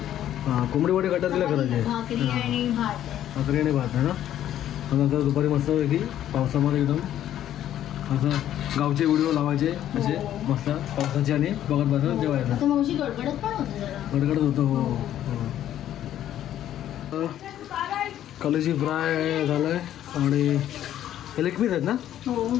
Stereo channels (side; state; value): right; quieter; 11.6 dB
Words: हां कोंबडी वडे कटर दिल्या करायचे. भाकरी आणि भात आहे ना. नंतर दुपारी मस्त की पावसामध्ये एकदम असं गावचे व्हिडिओ लावायचे असे मस्त पावसाचे आणि बघत बघत जेवायचं. गडगडत होतं. हो कलेजी फ्राय झालं आहे आणि हे लेग पीस आहेत ना.